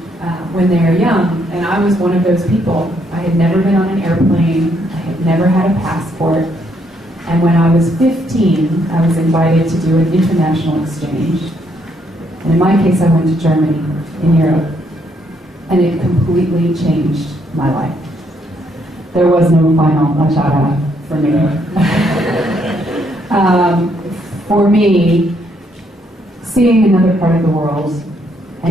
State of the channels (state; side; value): normal; both; correlation 0.73